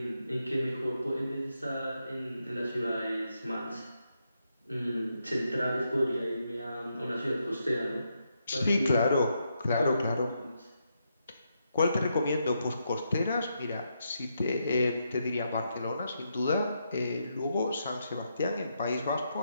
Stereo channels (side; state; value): both; inverted; correlation -0.81